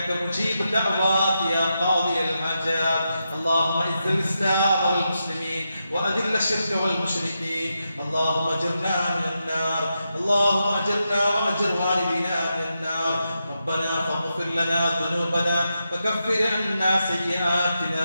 مجيب الدعوات يا قاضي الحاجات. اللهم اعز الإسلام والمسلمين وأذل الشرك والمشركين. اللهم أجرنا من النار. اللهم أجرنا وأجر والدينا من النار. ربنا فاغفر لنا ذنوبنا وكفر عنا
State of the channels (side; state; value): both; inverted; correlation -0.86